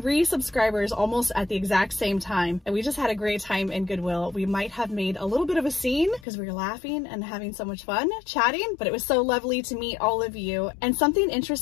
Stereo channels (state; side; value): drops out; right; at 6.2 s